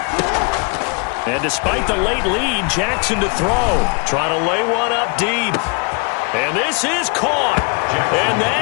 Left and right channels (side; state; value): right; quieter; 32.5 dB